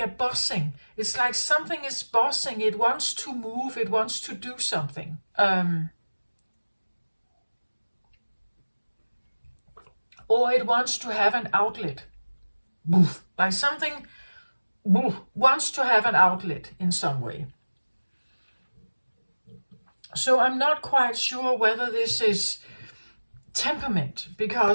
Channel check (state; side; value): inverted; both; correlation -1.00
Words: buzzing. It's like something is buzzing. It wants to move. It wants to do something. Or it wants to have an outlet. Like something wants to have an outlet in some way. So I'm not quite sure whether this is temperament,